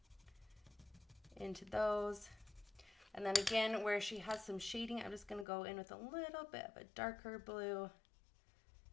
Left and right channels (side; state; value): right; drops out; at 5.5 s